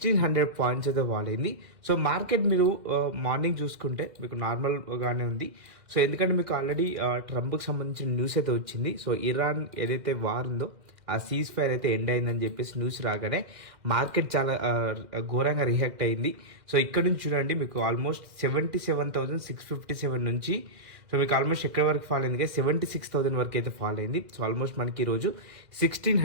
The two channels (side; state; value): left; late; 2.0 ms